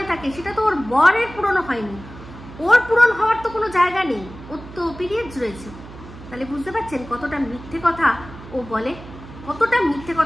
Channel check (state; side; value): noise; right; hum, 16 dB below the sound